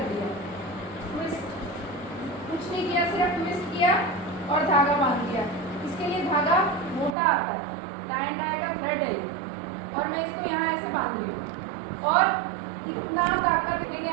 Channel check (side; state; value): left; drops out; at 7.2 s